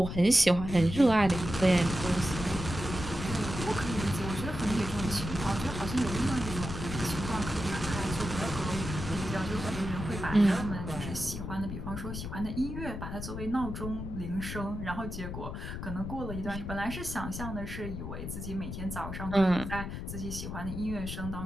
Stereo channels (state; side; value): noise; left; rumble, 6 dB below the sound